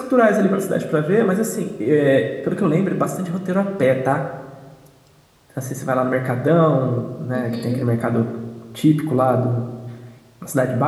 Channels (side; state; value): both; identical; correlation 1.00